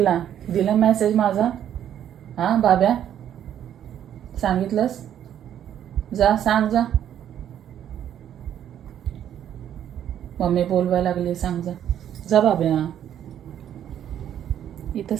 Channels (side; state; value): left; quieter; 10.2 dB